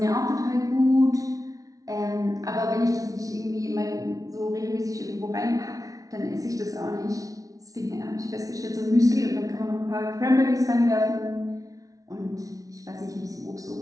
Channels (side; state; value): left; late; 0.17 ms